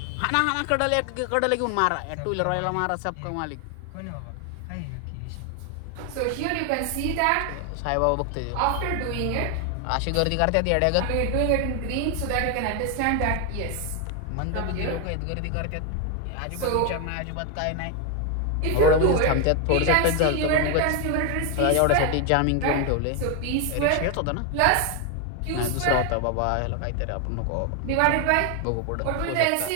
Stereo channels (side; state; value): both; different; correlation 0.00